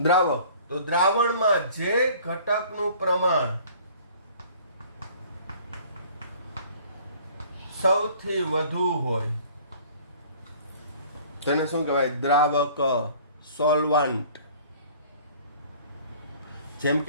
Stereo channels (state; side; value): inverted; both; correlation -0.51